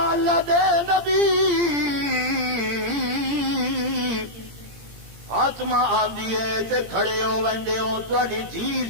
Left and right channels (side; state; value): left; late; 17 ms